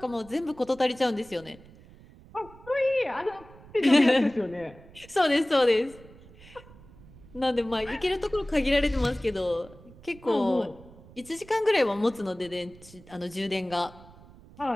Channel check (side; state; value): right; noise; rumble, 22 dB below the sound